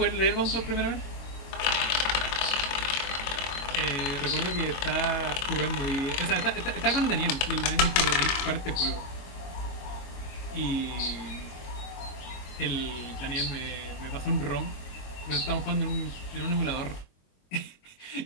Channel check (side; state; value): right; late; 22 ms